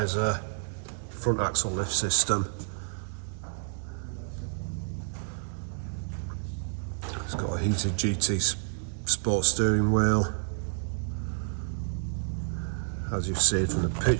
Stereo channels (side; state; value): left; silent; digital silence